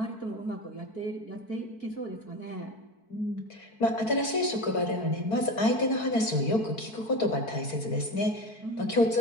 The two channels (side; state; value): right; late; 4.6 ms